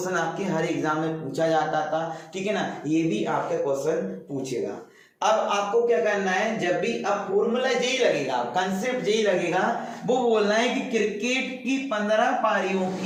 आपके हर एग्जाम में पूछा जाता था, ठीक है ना, ये भी आपका क्वेश्चन पूछेगा। अब आपको क्या करना है, जब भी अब फॉर्मूला यही लगेगा, कंसेप्ट यही लगेगा, वो बोलना है कि क्रिकेट की 15 पारियों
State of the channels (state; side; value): identical; both; correlation 1.00